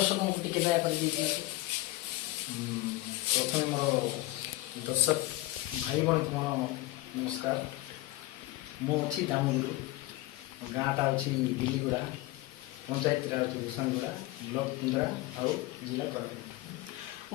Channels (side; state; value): right; quieter; 18.9 dB